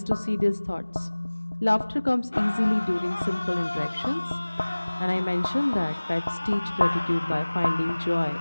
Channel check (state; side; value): inverted; both; correlation -1.00